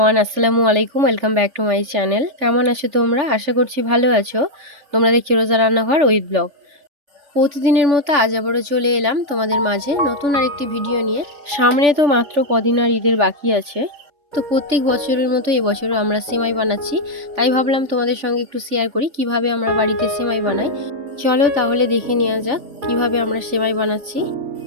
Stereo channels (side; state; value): left; late; 3.5 ms